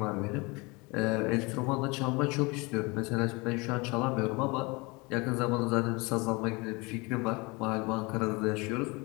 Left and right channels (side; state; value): right; quieter; 26.4 dB